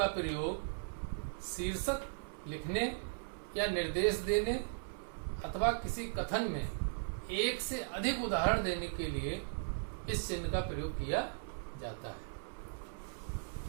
प्रयोग शीर्षक लिखने या निर्देश देने अथवा किसी कथन में एक से अधिक उदाहरण देने के लिए इस चिन्ह का प्रयोग किया जाता है।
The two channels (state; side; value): silent; left; 53 dB below the other